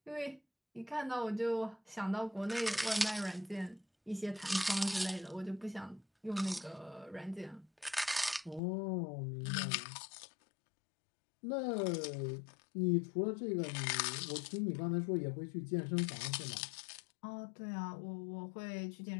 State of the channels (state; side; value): drops out; right; at 8.6 s